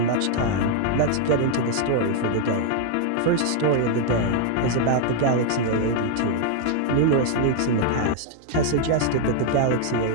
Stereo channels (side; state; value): both; different; correlation 0.00